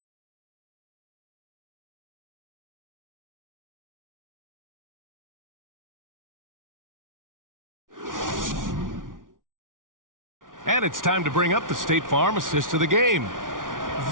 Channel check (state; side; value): late; left; 0.88 ms